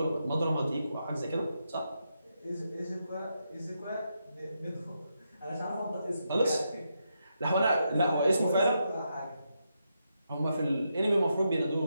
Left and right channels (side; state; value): both; inverted; correlation -0.83